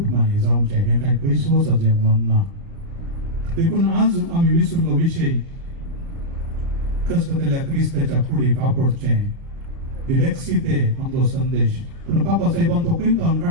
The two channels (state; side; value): late; left; 30 ms